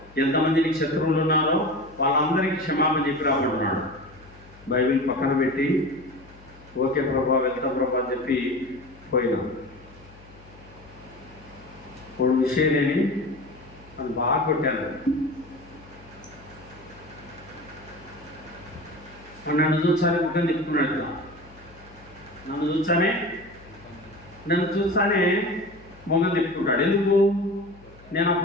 ఎంతమంది నీకు శత్రువులు ఉన్నారో వాళ్ళందరికీ క్షమాపణ చెప్పి రాబడుతున్నాడు. బైబిల్ పక్కన పెట్టి ఓకే ప్రభా, వెళ్తాం ప్రభా అని చెప్పి పోయినాం. ఇప్పుడు విషయం లేని నన్ను బాగా కొట్టాను. నన్ను చూసానే ముఖం తిప్పుకున్నాడు. నన్ను చూసానే మొగం తిప్పుకుంటాడు. ఎందుకు? నేను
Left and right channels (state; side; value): noise; left; hum, 23 dB below the sound